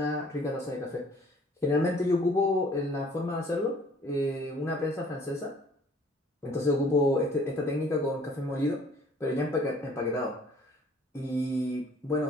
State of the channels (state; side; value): normal; both; correlation 0.56